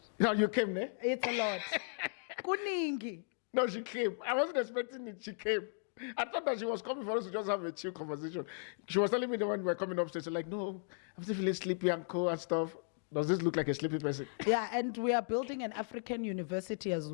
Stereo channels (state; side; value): silent; right; digital silence